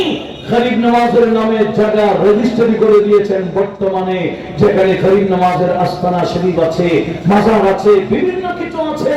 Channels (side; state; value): both; identical; correlation 1.00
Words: গরিব নওয়াজের নামে জায়গা রেজিস্ট্রি করে দিয়েছেন বর্তমানে, যেখানে গরিব নওয়াজের আস্তানা শরীফ আছে, মাজার আছে, বিভিন্ন কিছু আছে,